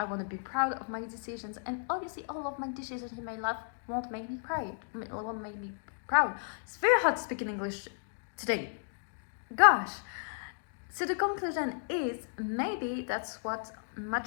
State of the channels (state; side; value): silent; right; digital silence